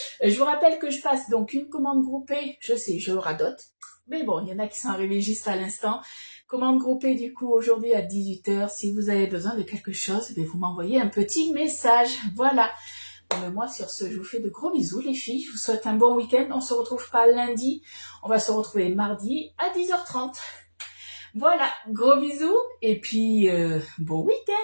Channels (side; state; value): both; inverted; correlation -1.00